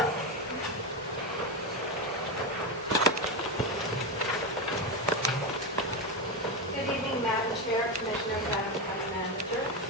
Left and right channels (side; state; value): both; normal; correlation 0.12